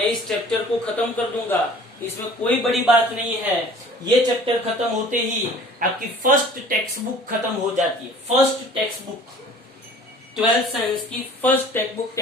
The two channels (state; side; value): normal; both; correlation 0.48